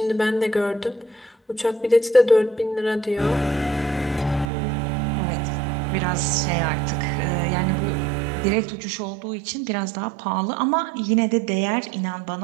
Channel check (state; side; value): drops out; left; at 4.5 s